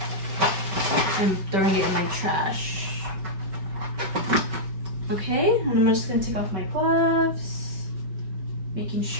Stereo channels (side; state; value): left; late; 5.2 ms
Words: up, and throwing it in my trash. Okay, and I'm just going to take off my gloves, making